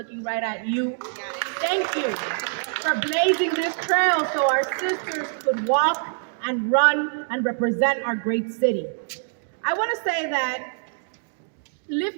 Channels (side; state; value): left; silent; digital silence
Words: right at you. Thank you for blazing this trail so our sisters could walk and run and represent our great city. I want to say that